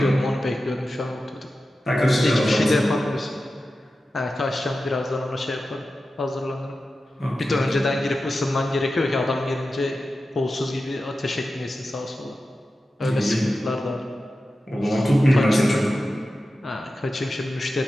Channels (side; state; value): both; normal; correlation 0.93